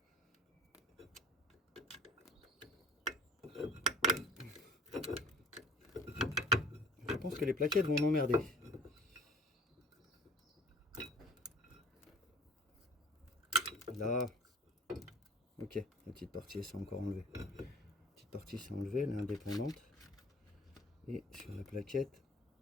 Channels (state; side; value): normal; both; correlation 0.48